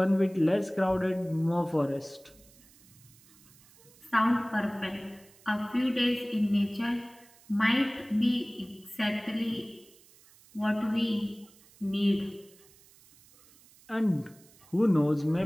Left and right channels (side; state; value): right; noise; hiss, 26 dB below the sound